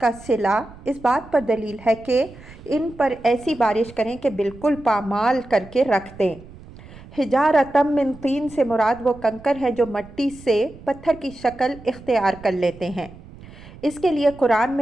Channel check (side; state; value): right; noise; rumble, 19 dB below the sound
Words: کا صلہ اس بات پر دلیل ہے کہ ان پر ایسی بارش کریں کہ بالکل پامال کر کے رکھ دیں۔ حجارۃ من طین سے مراد وہ کنکر ہیں جو مٹی سے پتھر کی شکل اختیار کر لیتے ہیں۔ اس کے لیے قرآن